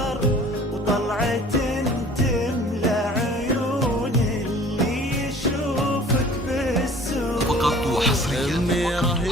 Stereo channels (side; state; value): both; normal; correlation 0.49